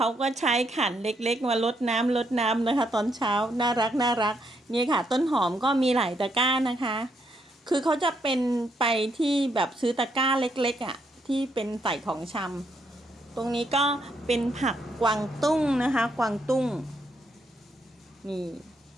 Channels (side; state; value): both; normal; correlation 0.76